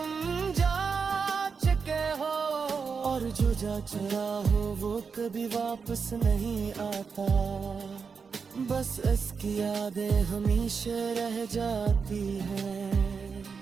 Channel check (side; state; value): left; quieter; 5.5 dB